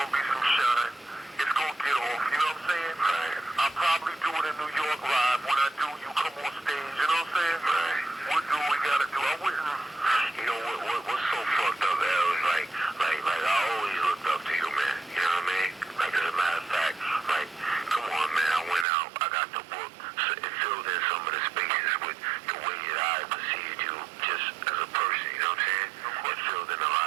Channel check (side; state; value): left; drops out; at 18.9 s